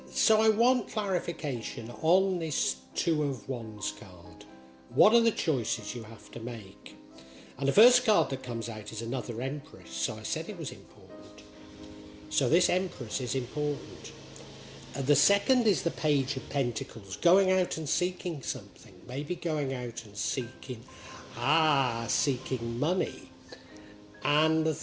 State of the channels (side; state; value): both; identical; correlation 1.00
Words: so I want clarification on this Two of Wands card. What are the choices you have to make? And the first card that comes out is another Empress, so I said it was important. So this Empress is important. The second is the Page of Pentacles, going out and seeking something, maybe going out and seeking money. And the